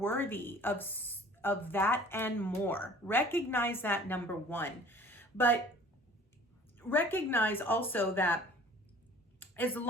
of that and more. Recognize that, number one. But recognize also that as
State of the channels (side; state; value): both; normal; correlation 0.49